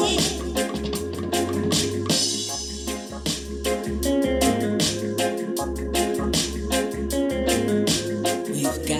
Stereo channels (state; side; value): identical; both; correlation 1.00